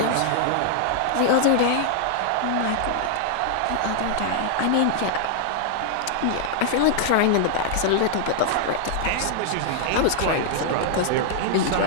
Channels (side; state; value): both; different; correlation -0.01